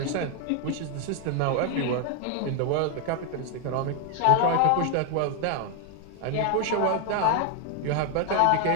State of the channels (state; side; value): different; both; correlation 0.01